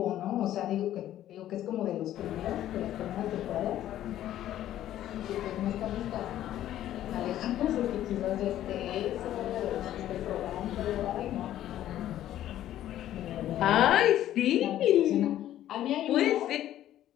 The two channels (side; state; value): right; quieter; 12.5 dB